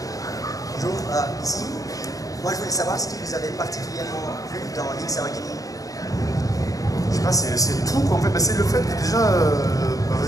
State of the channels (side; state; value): right; late; 0.17 ms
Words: Bonjour, ici. Moi je voulais savoir ce qui vous avait particulièrement plu dans Link's Awakening. Je sais pas, c'est tout quoi en fait. C'est le fait que déjà.